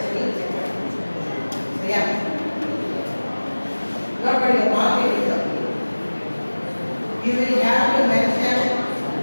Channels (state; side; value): inverted; both; correlation -1.00